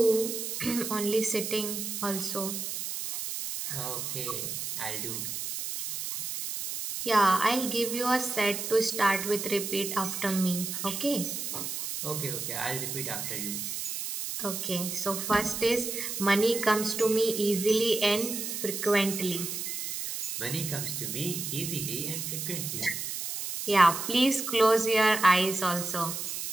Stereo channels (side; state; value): right; noise; hiss, 4 dB below the sound